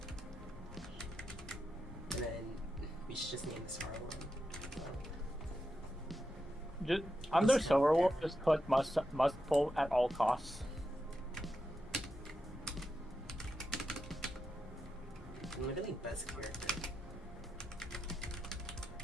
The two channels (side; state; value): both; normal; correlation 0.87